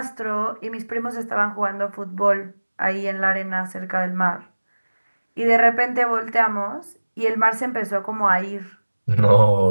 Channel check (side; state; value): both; inverted; correlation -1.00